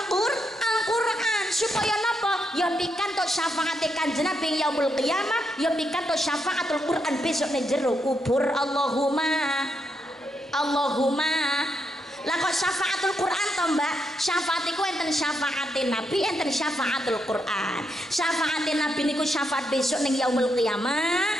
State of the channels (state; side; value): normal; both; correlation 0.81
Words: supaya napa? Ya pikantuk syafaate Kanjeng Nabi yaumul qiyamah, ya pikantuk syafaatul Qur'an besok ning jero kubur. Allahumma. Lah kok syafaatul Qur'an to Mbak? Syafaat iku enten syafaatin Nabi, enten syafaatul Qur'an. Syafaatin Nabi niku syafaat besok ning yaumul